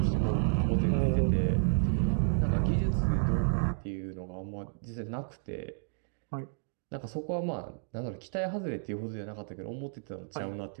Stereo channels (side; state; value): left; silent; digital silence